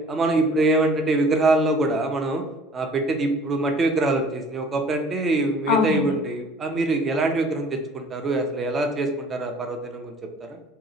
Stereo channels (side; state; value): both; normal; correlation 0.51